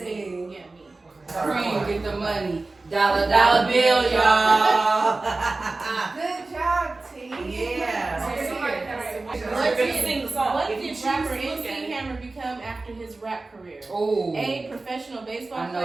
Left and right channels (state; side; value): quieter; left; 3.3 dB